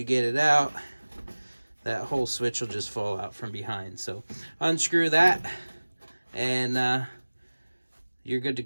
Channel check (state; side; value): inverted; both; correlation -1.00